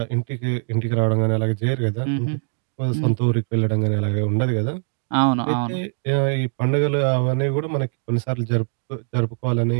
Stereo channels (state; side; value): silent; left; digital silence